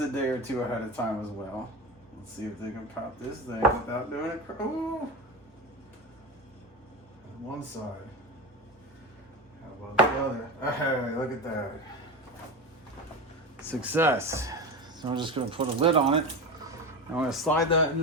a day or 2 ahead of time as well. Let's see if they can pop this thing without doing it. Ooh. One side. How about the other? Hey, look at that. Success. So I'm just gonna put a lid on it. I'm gonna slide that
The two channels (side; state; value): both; normal; correlation 0.22